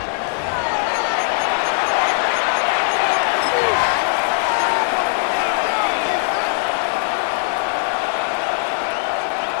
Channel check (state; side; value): silent; right; digital silence